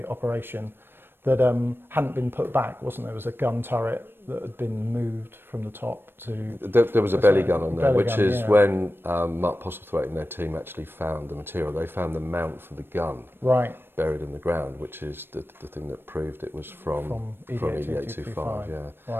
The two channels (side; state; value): left; late; 0.10 ms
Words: operation, that hadn't been put back, wasn't there? There was a gun turret that had been moved from the top to... There was a belly gun on there, which is yeah. when Mark Postlethwaite and their team actually found the material. They found the mount for the gun Right. buried in the ground, which is the thing that proved it was from ED-8025. Yeah.